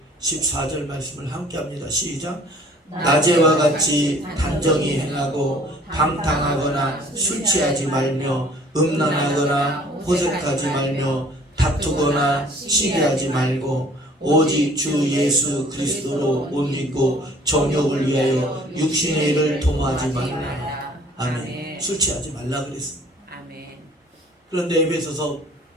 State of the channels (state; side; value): normal; both; correlation 0.54